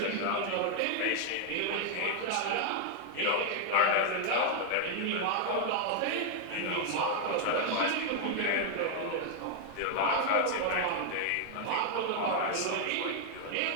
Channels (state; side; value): different; both; correlation 0.00